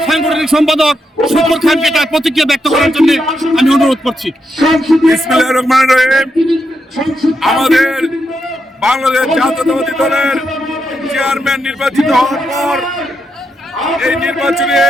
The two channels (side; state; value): both; normal; correlation 0.83